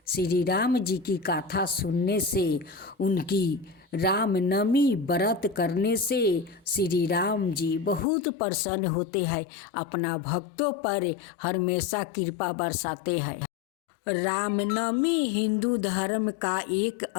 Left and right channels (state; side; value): drops out; right; at 8.1 s